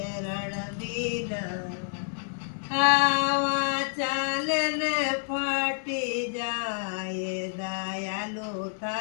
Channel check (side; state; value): right; silent; digital silence